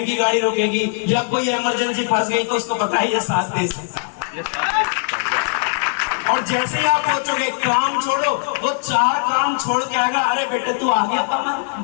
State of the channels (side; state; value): right; silent; 66 dB below the other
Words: गाड़ी रुकेगी या कोई इमरजेंसी फंस गई तो उसको पता है ये साथ दे सकता है। और जैसे ही आप सोचोगे काम छोड़ो, वो 4 काम छोड़ के आएगा, अरे बेटे तू आ गया कमल,